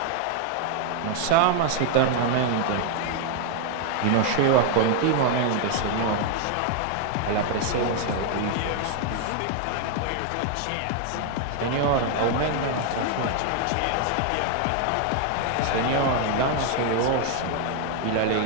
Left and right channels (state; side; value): different; both; correlation 0.00